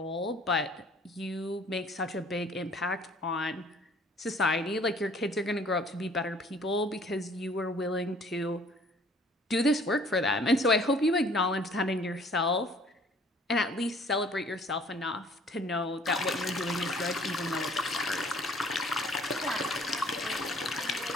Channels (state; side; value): normal; both; correlation 0.55